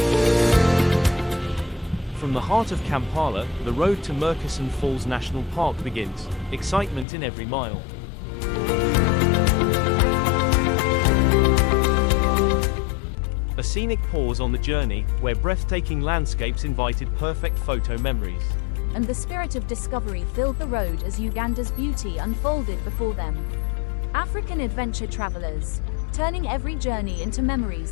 From the heart of Kampala, the road to Murchison Falls National Park begins, excitement in every mile. A scenic pause on the journey, where breathtaking landscapes invited perfect photo memories. And the spirit of discovery filled the road as Uganda's beauty unfolded before them. African adventure travelers, turning every journey into memories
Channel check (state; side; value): drops out; right; at 7.1 s